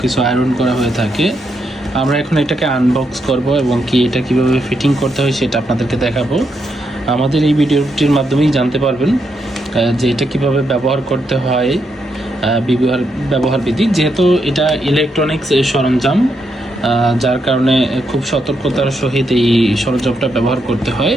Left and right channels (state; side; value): normal; both; correlation 0.80